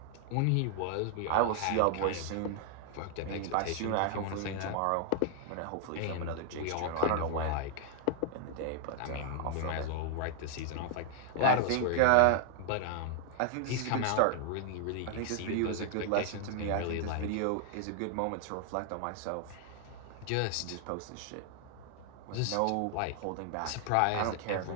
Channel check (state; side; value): different; both; correlation 0.00